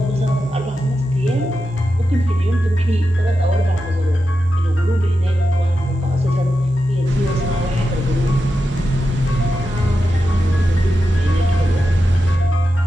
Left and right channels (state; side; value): normal; both; correlation 0.89